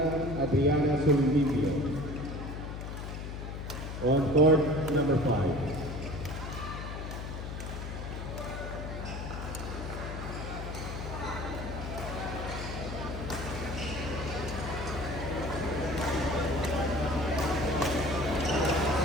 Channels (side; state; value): left; noise; hum, 7 dB below the sound